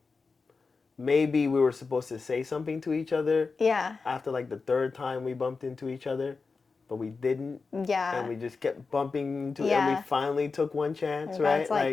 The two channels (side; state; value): right; quieter; 4.4 dB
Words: maybe we were supposed to say something to each other. Yeah. After like the third time we bumped into each other, but we didn't. Yeah. And we just kept bumping into and we finally took one chance, and right?